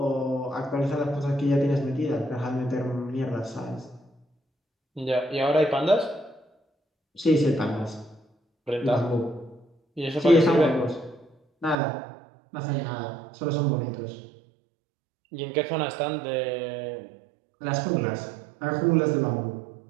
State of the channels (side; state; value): left; drops out; at 11.8 s